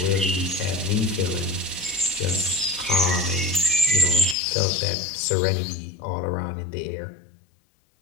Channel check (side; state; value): right; drops out; at 4.4 s